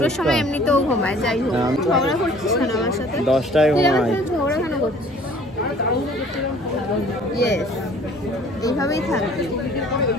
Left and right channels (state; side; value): normal; both; correlation 0.52